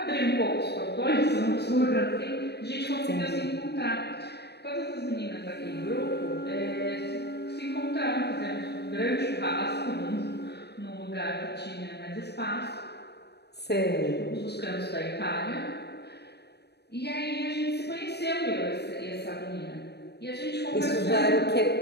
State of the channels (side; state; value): right; late; 0.48 ms